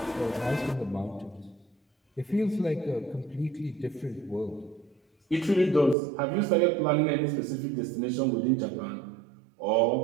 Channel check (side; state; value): left; drops out; at 6.0 s